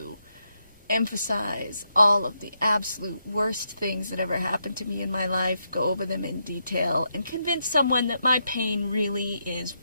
emphasize all of the absolute worst things that ever happened to me in my life, go over them in detail, and convince someone that my pain really is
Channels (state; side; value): inverted; both; correlation -0.80